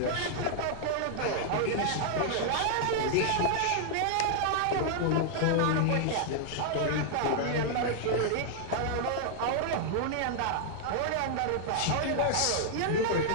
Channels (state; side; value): different; both; correlation -0.01